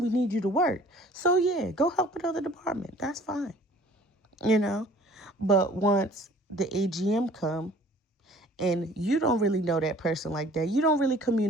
We need you to work. So, yeah, go help another department. That's fine, you know. But once the AGM come and you don't really know that person like that, you don't really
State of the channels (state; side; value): normal; both; correlation 0.51